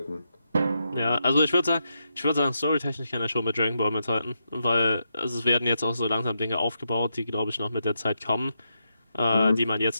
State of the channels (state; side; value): inverted; both; correlation -0.84